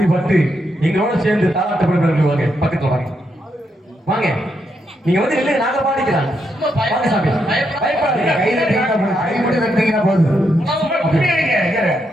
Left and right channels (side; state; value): both; normal; correlation 0.80